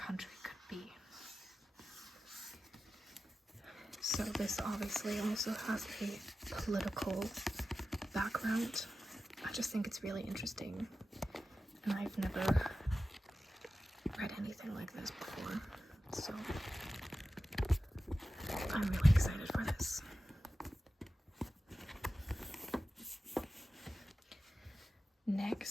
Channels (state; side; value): normal; both; correlation 0.93